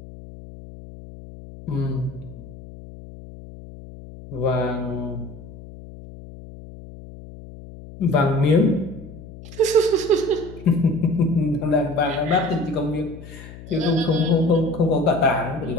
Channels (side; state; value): left; noise; hum, 16 dB below the sound